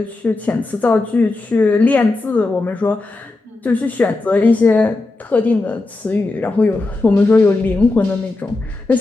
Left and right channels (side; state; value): right; quieter; 3.2 dB